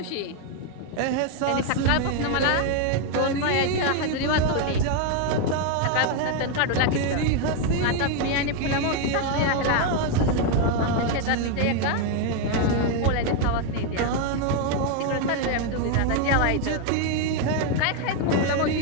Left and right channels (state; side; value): different; both; correlation 0.01